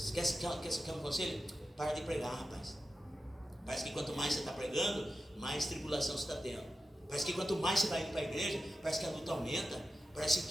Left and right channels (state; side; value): normal; both; correlation 0.92